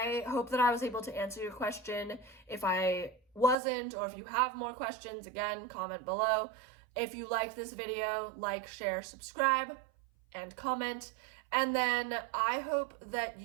hope that I was able to answer your question. If I wasn't, or if you have more questions, again, comment below. If you liked this video, like, share, subscribe, and comment. And then I hope that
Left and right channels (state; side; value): drops out; left; at 3.6 s